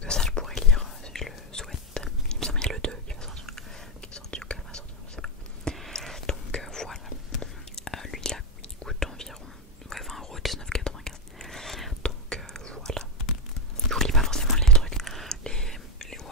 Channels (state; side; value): normal; both; correlation 0.05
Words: ça je pourrais lire si je le souhaite. Il me semble qu'il y a le 2 qui va sortir, qui est sorti ou qu'elle va sortir, je sais pas. Donc voilà, lui là il coûte environ 20 €, 19,95. Donc voilà, je vous lis pas forcément les trucs,